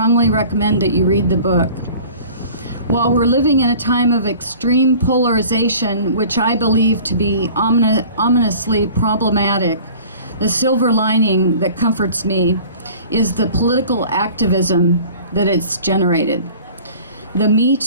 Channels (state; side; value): inverted; both; correlation -0.45